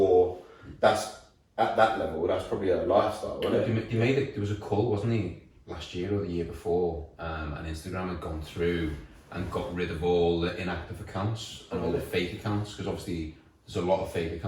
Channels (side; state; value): both; identical; correlation 1.00